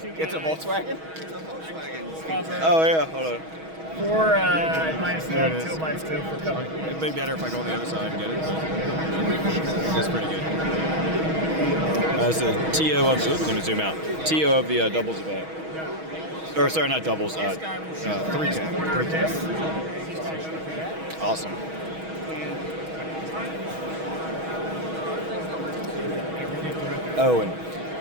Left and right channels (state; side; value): late; left; 6.3 ms